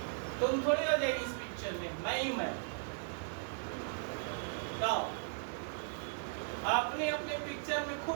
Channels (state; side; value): silent; left; digital silence